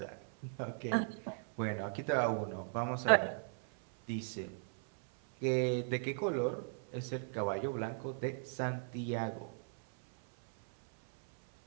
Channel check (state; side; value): silent; left; 53 dB below the other